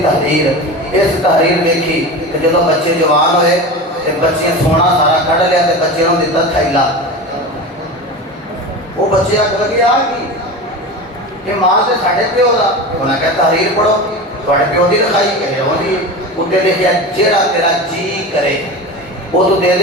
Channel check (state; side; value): normal; both; correlation 0.28